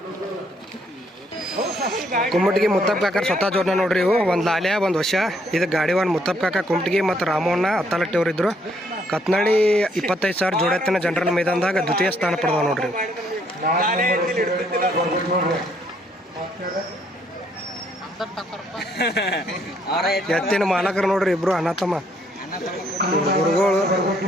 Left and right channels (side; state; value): both; normal; correlation 0.69